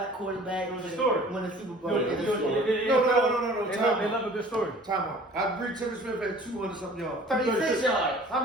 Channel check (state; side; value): normal; both; correlation 0.49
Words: quarterback Story. win the Super Bowl. No, They time love a good story. Time out. I agree Timmy Smith had 200 something yards. 36 yards. How